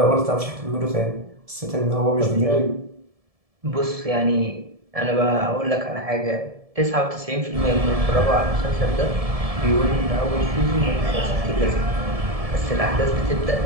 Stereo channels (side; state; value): left; late; 1.7 ms